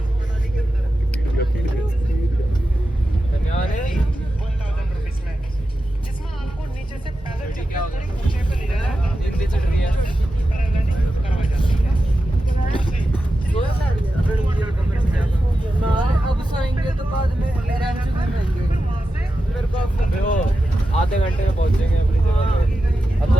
अब सोएंगे तो बाद में आधे घंटे में पहुंचेंगे अपनी जगह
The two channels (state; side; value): normal; both; correlation 0.91